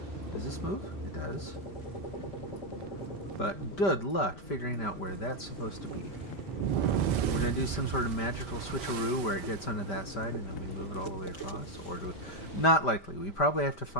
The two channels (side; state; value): right; late; 5.1 ms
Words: Does this move? It does. But good luck figuring out where that's supposed to be. We're going to do some sort of magical switcheroo where it gets onto that side and then we move it all the way across. Or do we... Not likely. We probably have to